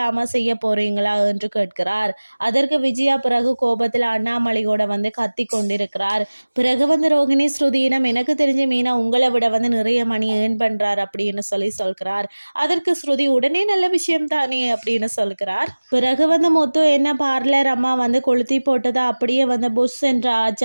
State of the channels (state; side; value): inverted; both; correlation -1.00